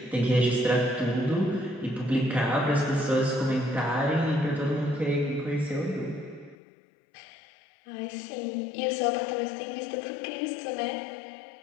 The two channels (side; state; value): right; drops out; at 6.6 s